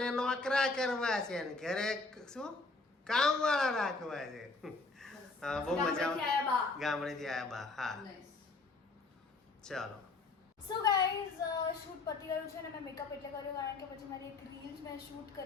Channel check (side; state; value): right; quieter; 3.6 dB